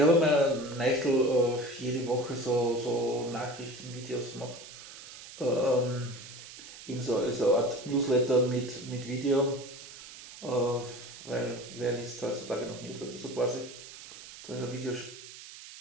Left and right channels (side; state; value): right; noise; hiss, 15 dB below the sound